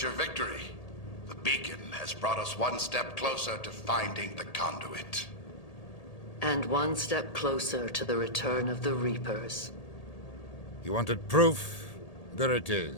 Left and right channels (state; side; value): late; right; 1.8 ms